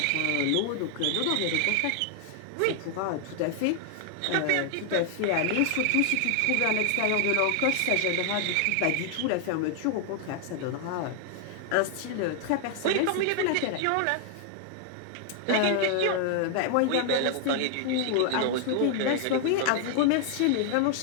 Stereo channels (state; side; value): different; both; correlation 0.00